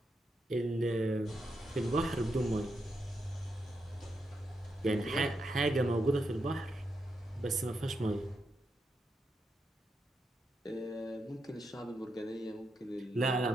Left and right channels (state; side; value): normal; both; correlation 0.83